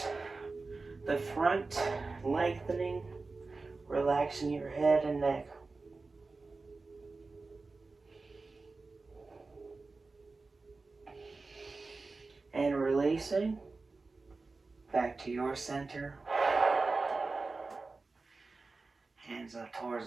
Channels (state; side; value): quieter; left; 3.8 dB